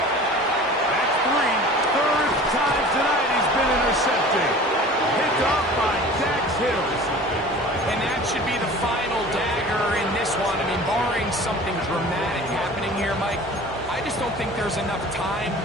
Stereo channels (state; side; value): normal; both; correlation 0.42